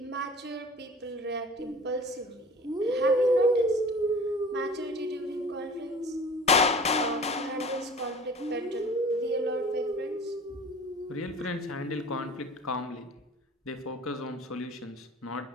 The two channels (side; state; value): both; normal; correlation 0.43